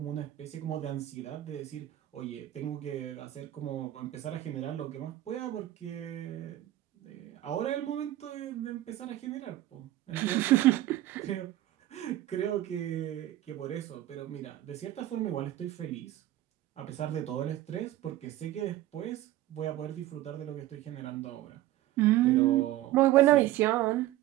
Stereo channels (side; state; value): left; quieter; 14.7 dB